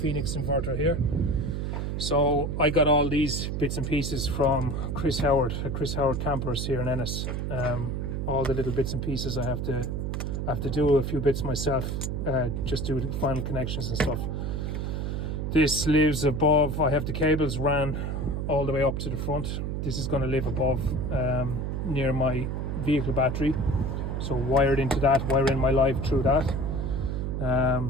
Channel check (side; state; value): right; noise; hum, 2 dB below the sound